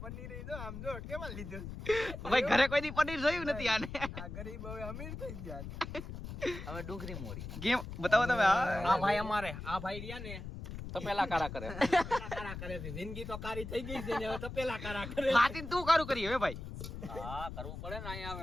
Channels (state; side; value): noise; left; rumble, 9 dB below the sound